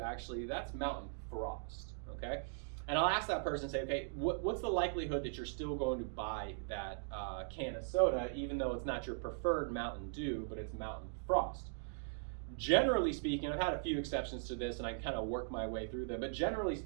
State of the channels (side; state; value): left; silent; digital silence